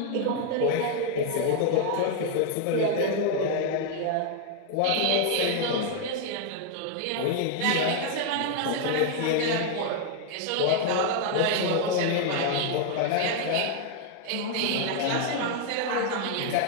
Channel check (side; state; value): both; different; correlation 0.00